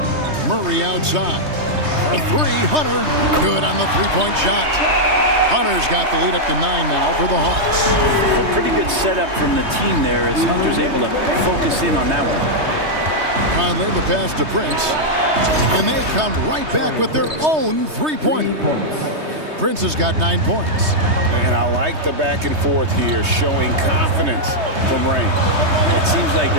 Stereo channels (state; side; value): late; left; 3.2 ms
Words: Murray outside. For 3, Hunter. Good on the three-point shot. Hunter's got the lead up to 9 now for the Hawks. Well, pretty good setup from the team there as Hunter's able to focus in on that one. Conley, the pass to Prince. And they come right back with their own three-pointer. Prince has got 9 points. And I like the back and forth here, showing confidence from Rain. It seems like